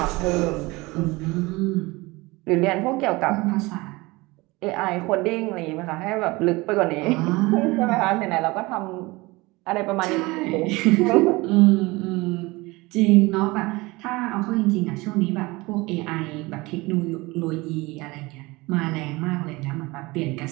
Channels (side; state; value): left; quieter; 22.6 dB